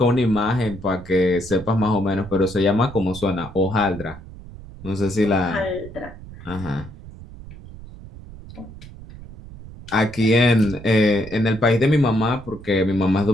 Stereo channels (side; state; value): right; noise; rumble, 16 dB below the sound